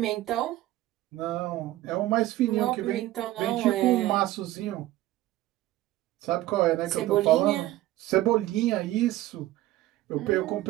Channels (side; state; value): left; quieter; 15.8 dB